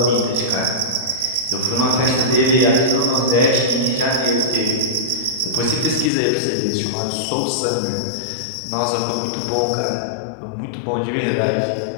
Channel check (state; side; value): drops out; right; at 6.1 s